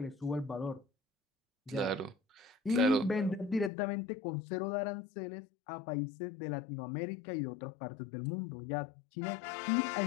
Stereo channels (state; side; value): drops out; right; at 3.7 s